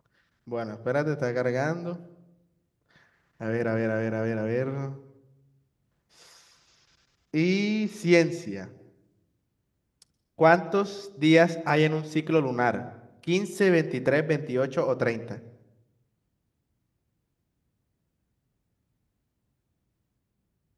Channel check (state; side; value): identical; both; correlation 1.00